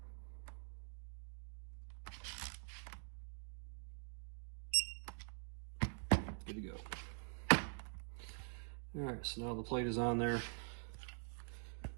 Good to go. All right, so now the plate is on there.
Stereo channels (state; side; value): silent; left; digital silence